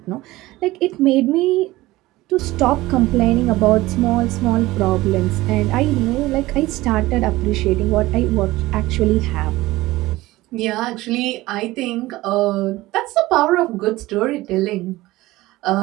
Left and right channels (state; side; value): quieter; left; 18.3 dB